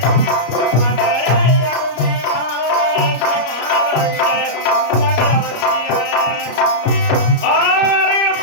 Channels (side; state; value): right; late; 33 ms